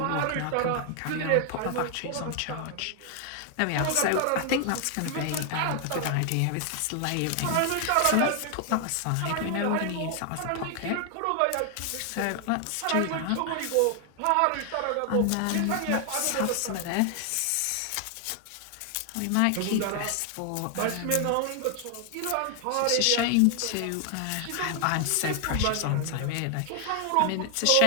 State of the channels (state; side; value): different; both; correlation 0.00